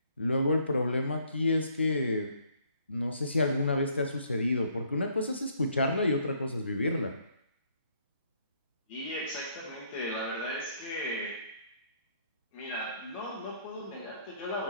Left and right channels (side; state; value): both; inverted; correlation -0.67